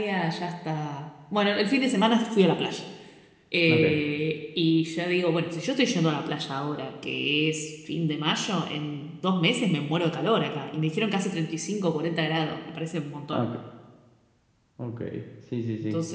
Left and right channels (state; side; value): identical; both; correlation 1.00